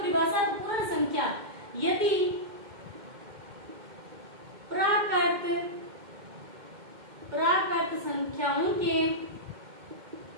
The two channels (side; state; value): left; late; 2.1 ms